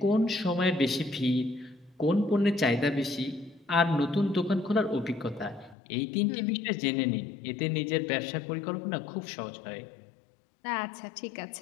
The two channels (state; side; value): drops out; right; at 5.8 s